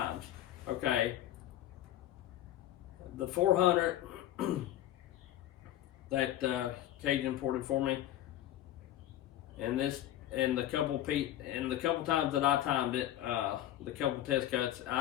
Okay, the 400 that Cajun ported for me, and the couple times that I timed it, the couple test cuts,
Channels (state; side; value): quieter; right; 12.9 dB